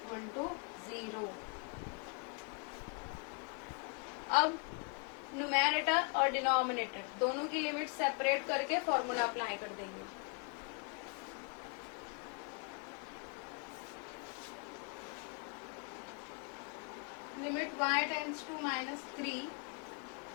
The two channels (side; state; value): right; quieter; 35.3 dB